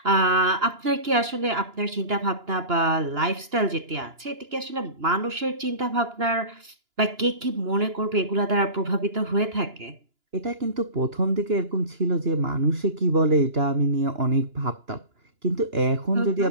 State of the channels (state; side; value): late; left; 2.9 ms